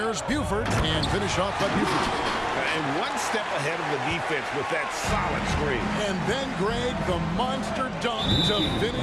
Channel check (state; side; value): identical; both; correlation 1.00